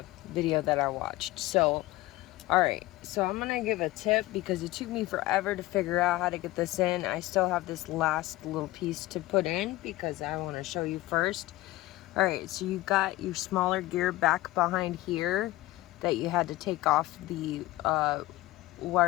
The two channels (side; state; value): right; quieter; 18.2 dB